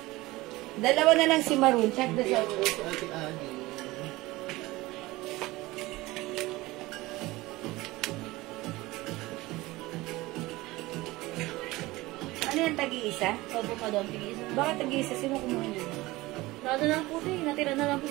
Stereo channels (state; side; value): quieter; left; 19.9 dB